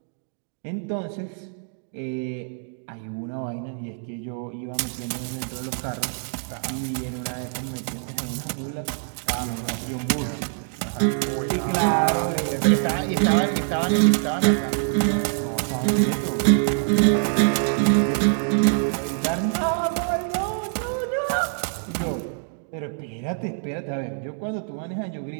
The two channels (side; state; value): left; silent; digital silence